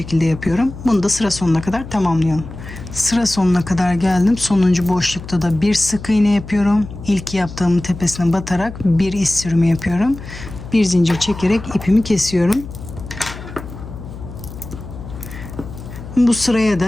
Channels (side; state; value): left; noise; hum, 13 dB below the sound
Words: yapıyorum. Bunu da sıra sonuna kadar tamamlıyorum. Sıra sonuna kadar geldim. Sonuncu boşlukta da bir sık iğne yapıyorum. İlk yaptığımın tepesine batarak bir iz sürümü yapıyorum. Bir zincir çekerek ipimi kesiyorum. Bu sıraya